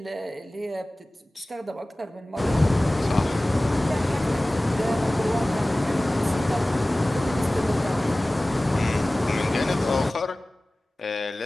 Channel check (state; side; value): normal; both; correlation 0.98